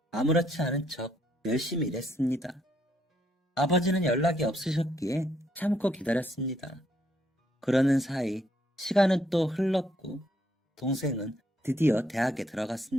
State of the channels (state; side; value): normal; both; correlation 0.72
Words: 아무렇지 않은 척 열심히 일했습니다. 아버지는 연락이 없으셨기에 참고 기다렸습니다. 그러는 사이 시간은 또 흘렀고 동생은 드디어 대학에